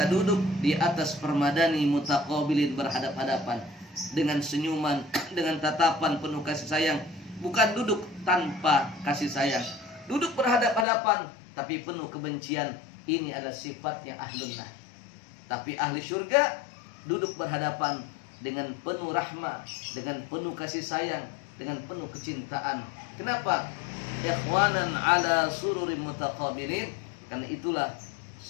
duduk di atas permadani mutaqabilin, berhadap-hadapan dengan senyuman, dengan tatapan penuh kasih sayang. Bukan duduk tanpa kasih sayang, duduk berhadap-hadapan tapi penuh kebencian. Ini adalah sifatnya ahlun nar. Tapi ahli surga duduk berhadapan dengan penuh rahmah, dengan penuh kasih sayang, dengan penuh kecintaan. Kenapa? Ikhwanan ala sururin mutaqabilin, karena itulah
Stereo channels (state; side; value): drops out; right; at 10.9 s